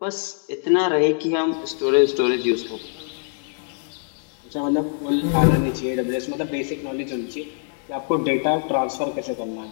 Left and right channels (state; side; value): silent; right; 57 dB below the other